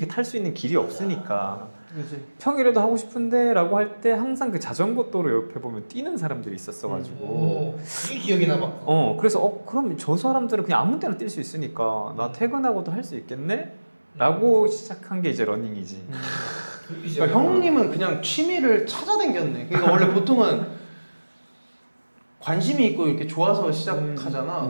탈 수 있는 길이 없으니까 그치. 평일에도 하고 싶은데 라고 할 때 항상 그 자전거 도로 옆에 보면 뛰는 사람들이 있었어가지고 그게 기억에 남았고. 그래서 그럼 저 사람들은 그냥 아무 때나 뛸 수 있으니까 나 퇴근하고도 할 수 있겠네? 라고 시작한 게 이제 러닝이지. 그러니까 형님은 그냥 취미를 찾아댕겼네. 그러니까 원래 보통은 관심이 있고 이렇게 좋아서 시작하잖아.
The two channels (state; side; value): inverted; both; correlation -1.00